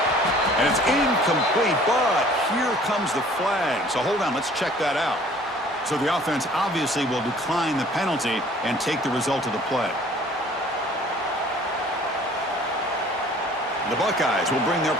And it's incomplete, but here comes the flag. So hold on, let's check that out. So the offense obviously will decline the penalty and take the result of the play. The Buckeyes will bring their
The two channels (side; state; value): both; normal; correlation 0.53